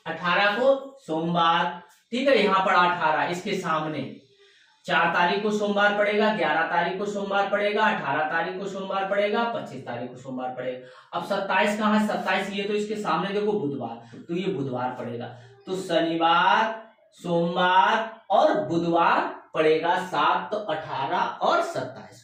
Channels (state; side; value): identical; both; correlation 1.00